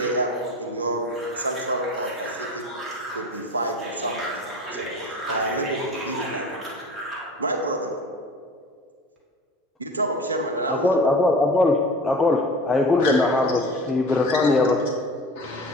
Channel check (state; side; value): normal; both; correlation 0.37